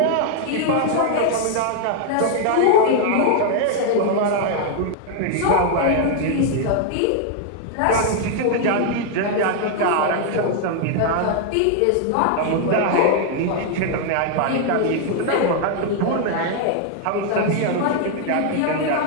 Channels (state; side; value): different; both; correlation 0.00